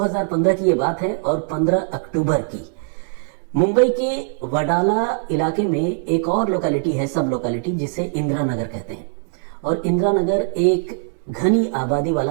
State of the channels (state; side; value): silent; left; 65 dB below the other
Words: की यह बात है और 15 अक्टूबर की मुंबई के वडाला इलाके में एक और लोकेलिटी है, सब लोकेलिटी, जिसे इंदिरा नगर कहते हैं। और इंदिरा नगर एक घनी आबादी